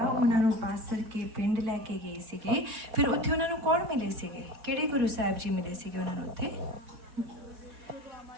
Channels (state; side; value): late; left; 4.2 ms